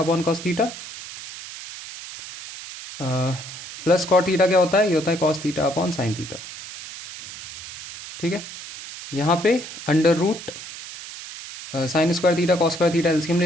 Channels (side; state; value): right; noise; hiss, 12 dB below the sound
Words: cos theta, plus cot theta क्या होता है, ये होता है cos theta upon sine theta. ठीक है, यहाँ पे √sin² theta cos² theta LCM